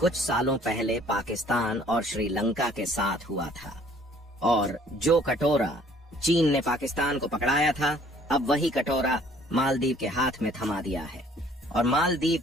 सालों पहले पाकिस्तान और श्रीलंका के साथ हुआ था। और जो कटोरा चीन ने पाकिस्तान को पकड़ाया था, अब वही कटोरा मालदीव के हाथ में थमा दिया है। और मालदीव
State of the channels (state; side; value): normal; both; correlation 0.57